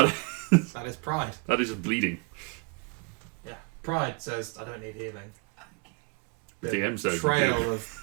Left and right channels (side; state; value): left; quieter; 32.1 dB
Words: That is pride. is just bleeding. Yeah. Pride says, I don't need healing. the DM says trail